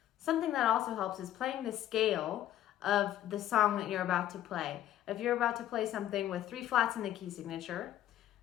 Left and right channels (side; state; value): right; quieter; 12.4 dB